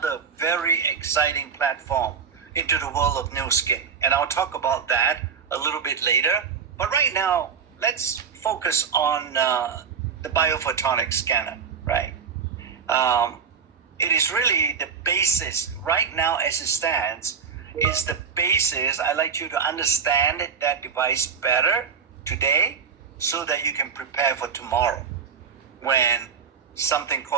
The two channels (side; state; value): left; quieter; 6.3 dB